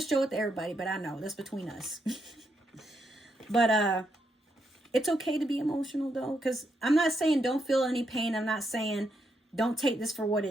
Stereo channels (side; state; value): both; normal; correlation 0.80